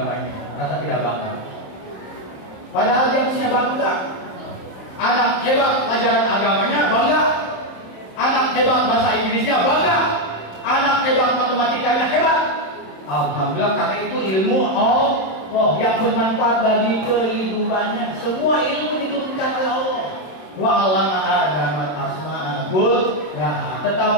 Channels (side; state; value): right; late; 27 ms